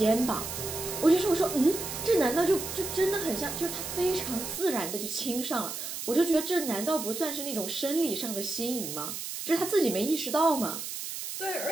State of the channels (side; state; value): right; noise; hiss, 6 dB below the sound